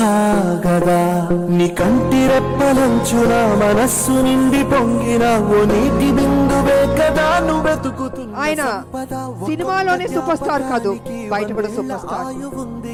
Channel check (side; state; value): both; identical; correlation 1.00